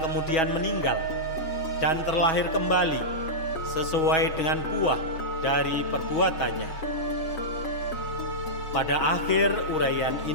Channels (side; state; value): right; late; 6.2 ms